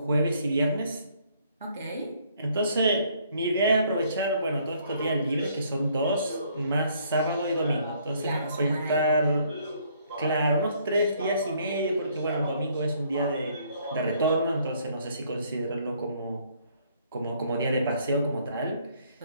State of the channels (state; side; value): inverted; both; correlation -0.65